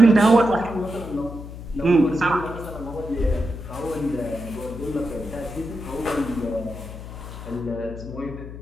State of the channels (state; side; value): noise; left; hum, 11 dB below the sound